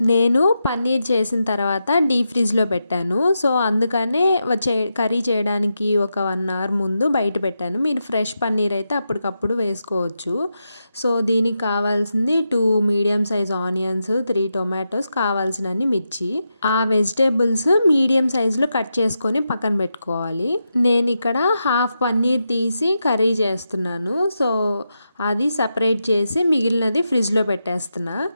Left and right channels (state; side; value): inverted; both; correlation -0.87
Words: నేను పన్నీర్ చేసిన తర్వాత డీప్ ఫ్రిడ్జ్లో పెట్టాను. సో అందుకనే కర్రీ చేయడానికి ఒక 1 అవర్ ముందు బయట పెట్టాను. మీరు ఫ్రెష్ పన్నీర్ అయితే అప్పటికప్పుడు వేసుకోవచ్చు. సో దీనికి కావాల్సింది 2 మీడియం సైజ్ ఆనియన్స్, 3 టొమాటోస్, కావాల్సినన్ని మిర్చి. ఆ వెజిటేబుల్స్ మీడియం సైజులో కట్ చేసుకొని పక్కన పెట్టుకోవాలి. నేను ఇక్కడ హాఫ్ పన్నీర్ తీసి కర్రీ చేస్తున్నాను. సో అది సపరేట్ చేసి మిగిలినది ఫ్రిడ్జ్లో పెట్టేస్తున్నా.